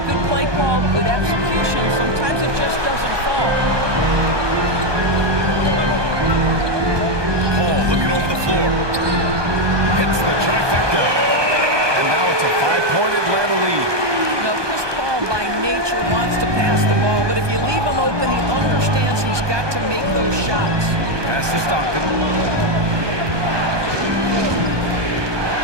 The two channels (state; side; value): late; left; 1.2 ms